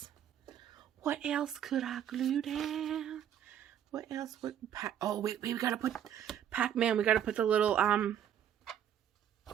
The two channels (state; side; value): quieter; left; 9.8 dB